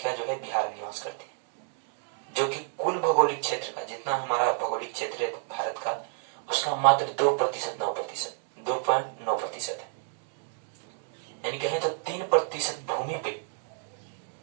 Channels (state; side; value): silent; left; 58 dB below the other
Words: जो है बिहार में निवास करती है, जो कि कुल भौगोलिक क्षेत्र का जितना हमारा भौगोलिक क्षेत्र है भारत का उसका मात्र 2.9% है। यानी कहें तो 3% भूमि पे